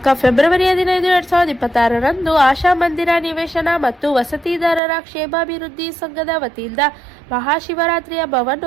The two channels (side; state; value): left; drops out; at 4.8 s